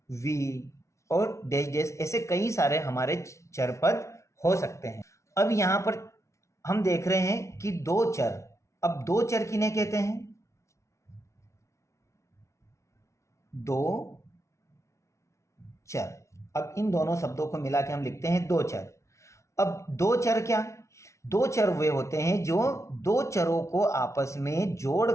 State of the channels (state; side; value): late; right; 0.14 ms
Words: v और डैश डैश, ऐसे कई सारे हमारे चर पद हो सकते हैं। अब यहाँ पर हम देख रहे हैं कि दो चर। अब दो चर किन्हें कहते हैं? दो चर। अब इन दोनों शब्दों को मिला के हम लिखते हैं दो चर। अब दो चर क्या? दो चर वे होते हैं जो दो चरों को आपस में